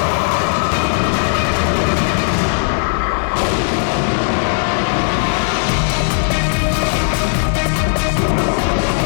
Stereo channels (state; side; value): silent; right; digital silence